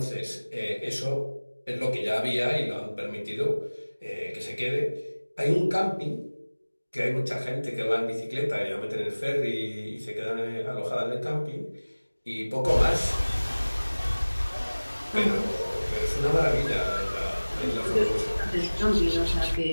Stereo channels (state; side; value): inverted; both; correlation -1.00